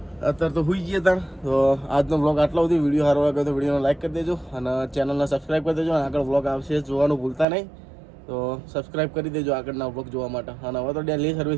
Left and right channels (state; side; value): drops out; left; at 7.5 s